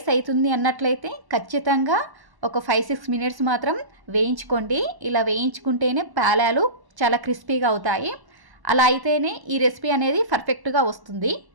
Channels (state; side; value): late; left; 1.1 ms